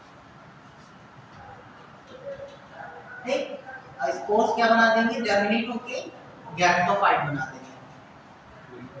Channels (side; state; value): both; identical; correlation 1.00